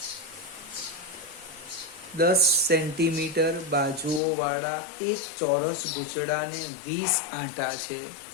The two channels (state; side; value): drops out; right; at 4.2 s